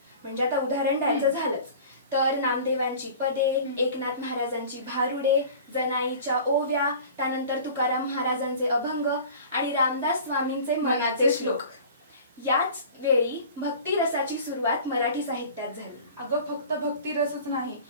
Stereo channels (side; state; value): both; inverted; correlation -0.41